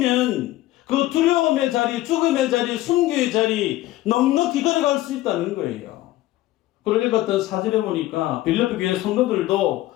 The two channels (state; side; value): quieter; right; 16.0 dB